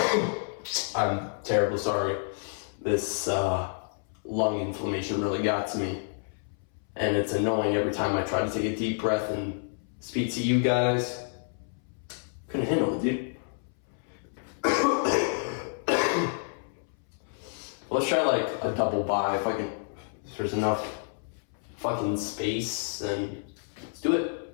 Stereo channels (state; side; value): silent; right; 59 dB below the other